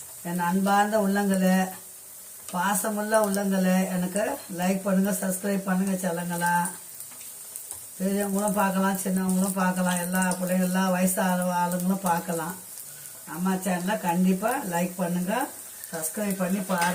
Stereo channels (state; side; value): identical; both; correlation 1.00